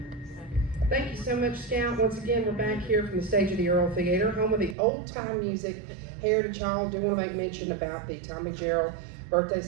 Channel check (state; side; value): drops out; left; at 4.8 s